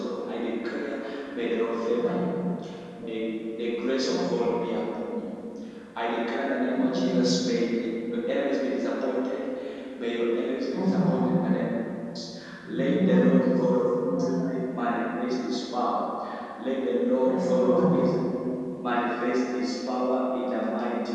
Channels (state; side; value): identical; both; correlation 1.00